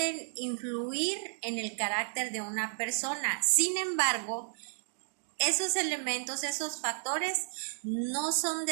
influir en el carácter de una persona. Sin embargo, esos elementos, esos factores no son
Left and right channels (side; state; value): left; silent; digital silence